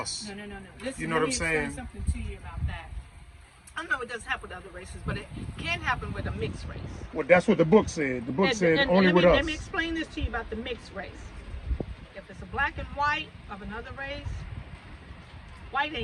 No. Listen, You know let what me I'm saying? explain something to you about that. I know it doesn't happen with other races, but it can happen with a mixed race. Well, that's what the book said. The book said And only with us. let me explain this to you about the mixed race. If it's a black and white of another race, white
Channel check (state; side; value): identical; both; correlation 1.00